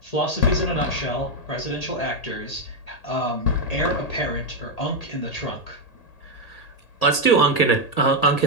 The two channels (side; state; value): right; late; 1.8 ms